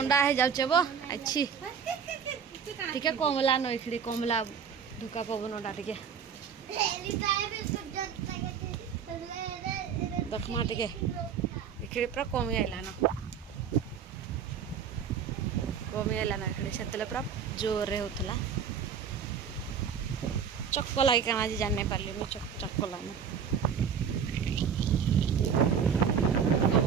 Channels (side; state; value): left; quieter; 7.3 dB